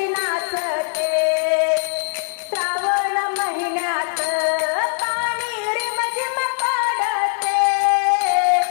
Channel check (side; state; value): right; silent; digital silence